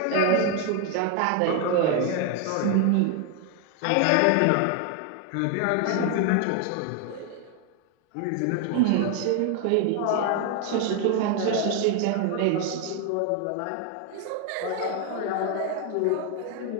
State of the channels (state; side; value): different; both; correlation 0.01